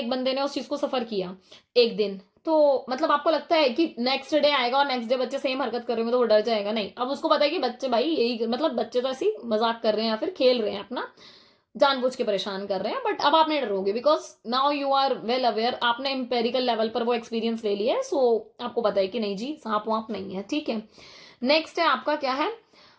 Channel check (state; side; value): identical; both; correlation 1.00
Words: बंदे ने उस चीज को सफर किया एक दिन, तो मतलब आपको लगता है कि नेक्स्ट डे आएगा और नेक्स्ट डे बच्चे सेम हरकत करेंगे तो वो डर जाएगा, नहीं। अब उसको पता है कि बच्चे भाई यही, मतलब बच्चे तो ऐसी मजाक कर रहे हैं या फिर खेल रहे हैं, अपना जानबूझ के परेशान कर रहे हैं, बट अब आप नहीं डरोगे because now you are well aware, आपने एम्पेरिकल लेवल पर वो एक्सपीरियंस ले लिया है। आपको पता है कि नहीं जी सांप वाप नहीं है, ठीक है। नेक्स्ट है आपका क्या है,